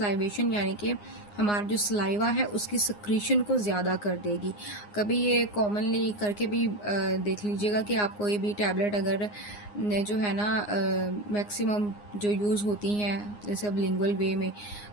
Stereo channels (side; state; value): right; late; 9.7 ms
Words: यानी कि हमारा जो सलाइवा है उसकी सक्रीशन को ज़्यादा कर देगी। कभी ये कॉमनली करके भी देख लीजिएगा कि आप कोई भी टैबलेट अगर जो है ना मैक्सिमम जो यूज़ होती हैं जैसे अब लिंगुअल वे में,